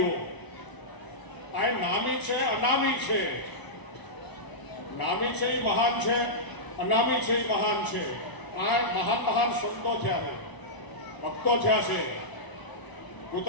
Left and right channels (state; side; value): late; right; 1.0 ms